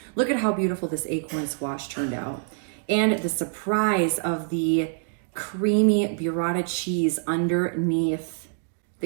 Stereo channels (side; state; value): left; silent; digital silence